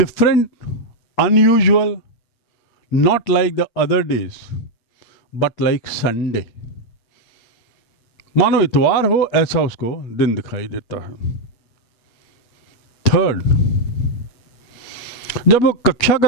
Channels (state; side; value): late; right; 8.5 ms